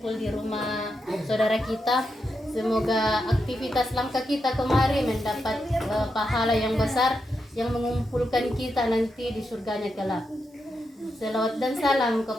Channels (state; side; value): normal; both; correlation 0.85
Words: di rumah saudara kita. Semoga aktivitas langkah kita kemarin mendapat pahala yang besar yang mengumpulkan kita nanti di surganya kelak. Selawat dan salam